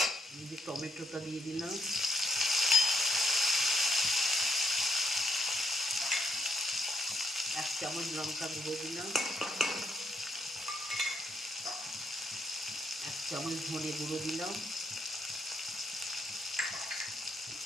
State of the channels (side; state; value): both; normal; correlation 0.76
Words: এই যে টমেটোটা দিয়ে দিলাম, এক চামচ লঙ্কা গুঁড়ো দিলাম, এক চামচ ধনে গুঁড়ো দিলাম,